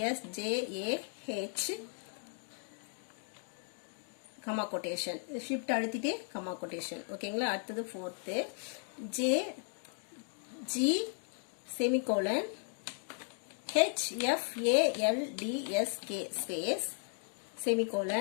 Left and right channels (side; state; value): right; silent; 54 dB below the other